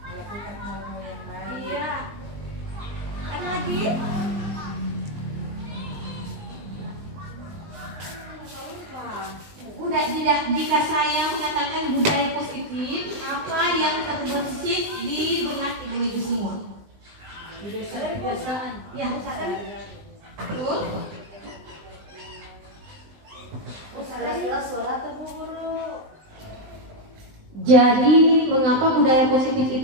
Melakukan hal-hal yang baik. Iya. Ada lagi? Udah, tidak, jika saya mengatakan budaya positif, apa yang terbesit di benak ibu-ibu semua? Kebiasaan. Ya, betul. Suara atau guru. Jadi, mengapa budaya positif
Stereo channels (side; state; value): left; late; 20 ms